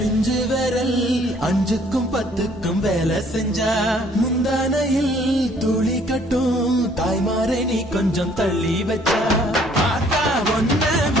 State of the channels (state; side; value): normal; both; correlation 0.60